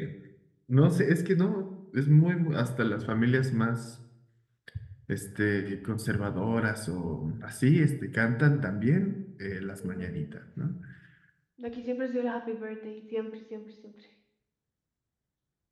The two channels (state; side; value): identical; both; correlation 1.00